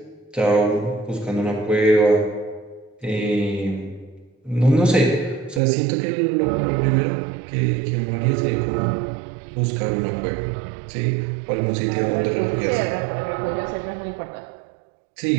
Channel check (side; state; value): left; drops out; at 5.6 s